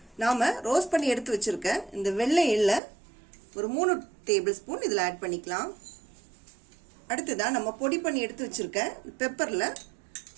நாம ரோஸ்ட் பண்ணி எடுத்து வச்சிருக்க இந்த வெள்ளை எள்ள ஒரு 3 டேபிள் ஸ்பூன் இதில் ஆட் பண்ணிக்கலாம். அடுத்ததா நம்ம பொடி பண்ணி எடுத்து வச்சிருக்க பெப்பர்ல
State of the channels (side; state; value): left; drops out; at 2.8 s